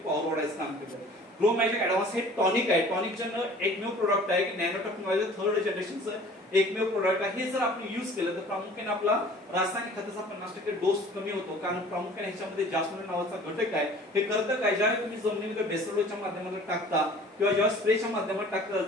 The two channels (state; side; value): normal; both; correlation 0.48